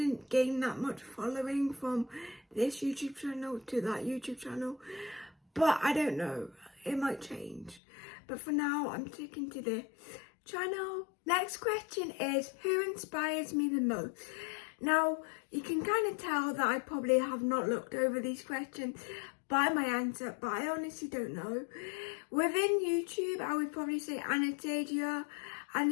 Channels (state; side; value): drops out; right; at 7.8 s